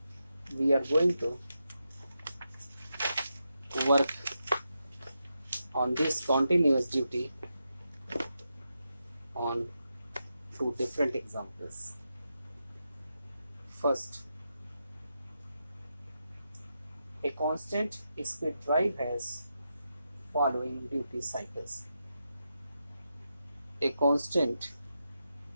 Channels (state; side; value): inverted; both; correlation -0.86